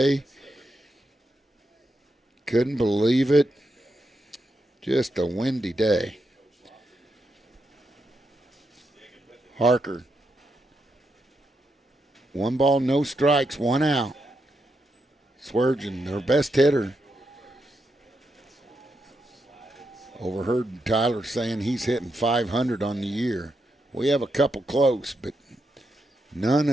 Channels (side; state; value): both; normal; correlation 0.83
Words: Couldn't believe it. Just a windy day. Harker. 1 ball, no strikes, 1 out. Sweargen, their best hitter. Overheard Tyler saying he's hitting 500 on the year. We have a couple close, but none